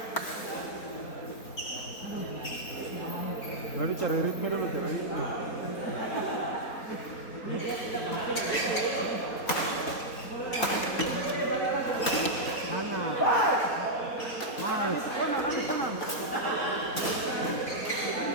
Berarti cari ritme dulu tuh.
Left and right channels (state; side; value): late; right; 4.2 ms